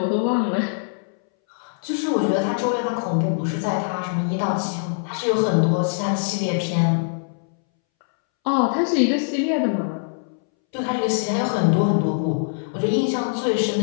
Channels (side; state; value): right; silent; 63 dB below the other